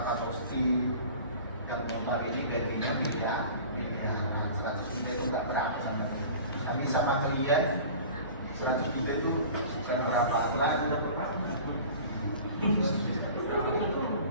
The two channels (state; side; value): inverted; both; correlation -0.41